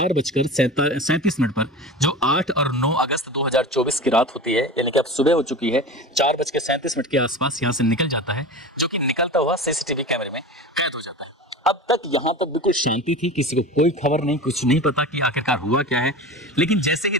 पर जो 8 और 9 अगस्त 2024 की रात होती है, यानी कि अब सुबह हो चुकी है, 4:37 के आसपास यहाँ से निकल जाता है, जो कि निकलता हुआ सीसीटीवी कैमरे में कैद हो जाता है। अब तक यहाँ पर बिल्कुल शांति थी, किसी को कोई खबर नहीं, कुछ नहीं पता कि आखिरकार हुआ क्या है। लेकिन जैसे ही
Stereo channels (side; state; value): both; normal; correlation 0.31